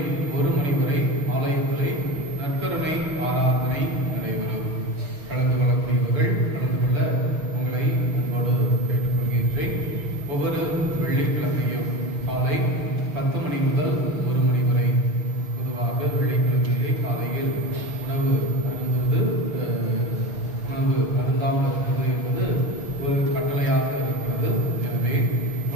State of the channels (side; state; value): left; late; 6.9 ms